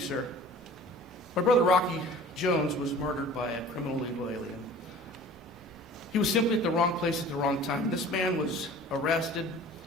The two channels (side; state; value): both; normal; correlation 0.44